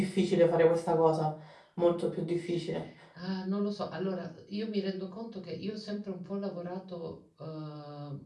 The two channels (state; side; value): identical; both; correlation 1.00